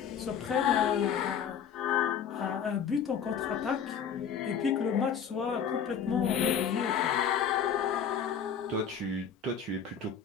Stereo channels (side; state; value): right; quieter; 7.6 dB